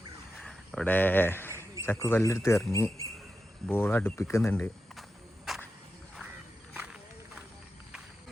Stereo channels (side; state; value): both; normal; correlation 0.90